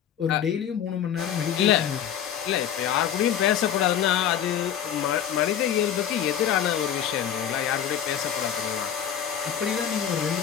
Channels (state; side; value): quieter; right; 9.4 dB